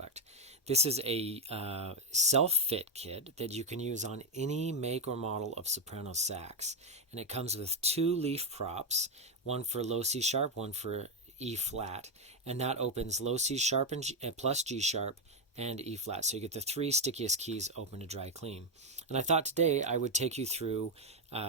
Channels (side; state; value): both; normal; correlation 0.05